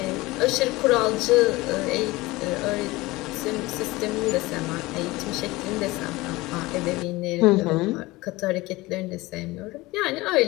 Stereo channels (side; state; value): right; quieter; 20.7 dB